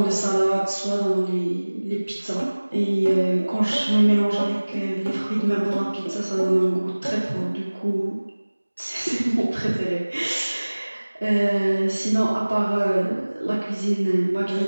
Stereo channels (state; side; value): inverted; both; correlation -1.00